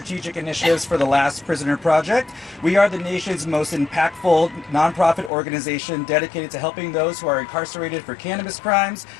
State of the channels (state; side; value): drops out; right; at 5.3 s